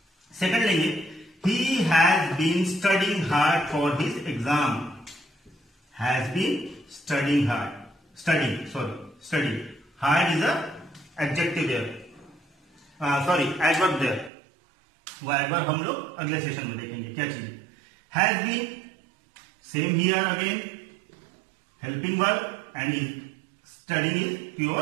सेकंड लेंगे, he has been studying hard for his exam, has been studying hard, study hard is a adjective there, sorry adverb there, वो एडवर्ब हम लोग अगले सेशन में देखेंगे क्या चीज। Has been, same here again helping verb and is studying is pure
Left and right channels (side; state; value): left; drops out; at 14.3 s